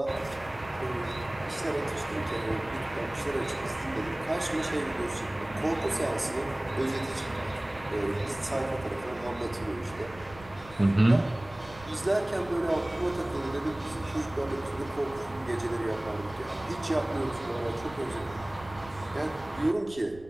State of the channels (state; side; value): noise; right; rumble, 19 dB below the sound